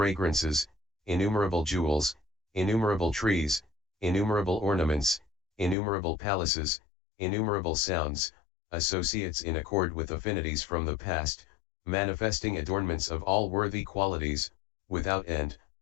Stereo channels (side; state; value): right; drops out; at 5.8 s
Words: innumerable jewels, innumerable trees, innumerable ornaments, innumerable palaces, innumerable sounds, associates in accord with affinities from the past, manifesting adornments of all worthy qualities, without end,